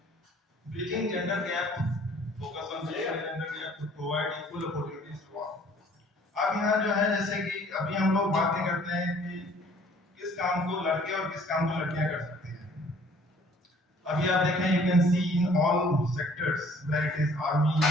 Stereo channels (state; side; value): normal; both; correlation 0.56